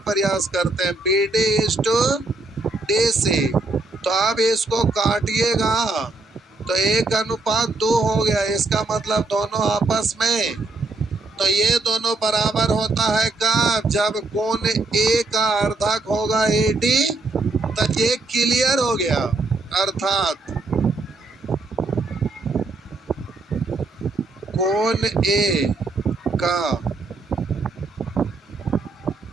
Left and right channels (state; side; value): quieter; left; 3.3 dB